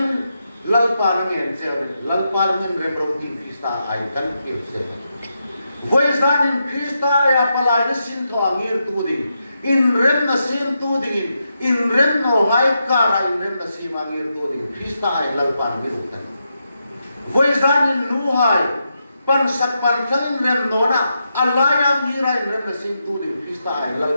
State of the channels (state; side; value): inverted; both; correlation -0.85